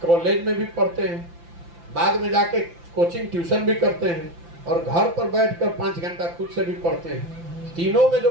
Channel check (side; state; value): left; late; 5.9 ms